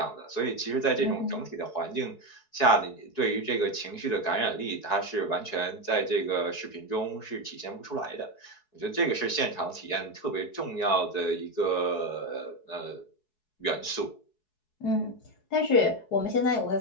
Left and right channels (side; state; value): right; late; 4.7 ms